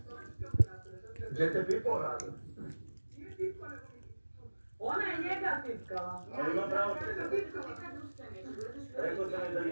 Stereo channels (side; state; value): both; inverted; correlation -1.00